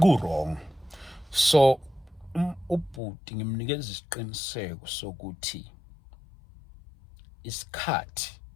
So ubhuti ngimnikeza isiqiniseko sokuthi isikhathi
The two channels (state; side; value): drops out; right; at 3.0 s